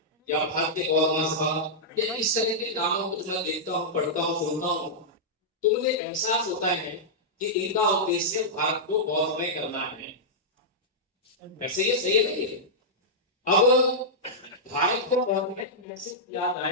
या भारतीय गौर महासभा या इस तरह के नामों को मैं देखता हूँ, पढ़ता हूँ, सुनता हूँ, तो मुझे एहसास होता है कि इनका उद्देश्य भारत को गौरवमय करना है। वैसे ये सही नहीं है। अब भारत को गौरवमय कैसे किया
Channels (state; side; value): normal; both; correlation -0.10